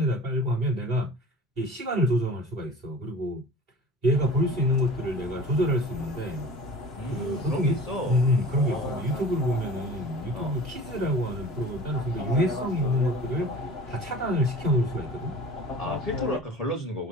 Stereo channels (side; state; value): both; normal; correlation 0.41